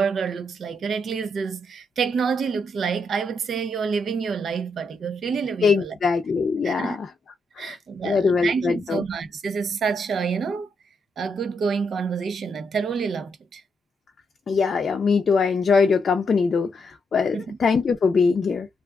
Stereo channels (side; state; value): both; normal; correlation 0.79